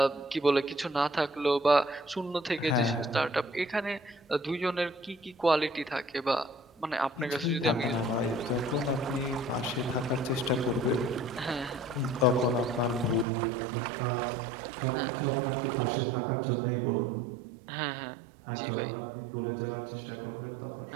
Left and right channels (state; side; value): drops out; left; at 13.2 s